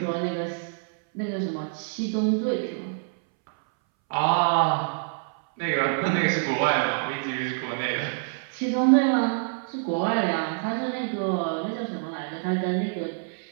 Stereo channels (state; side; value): silent; left; 61 dB below the other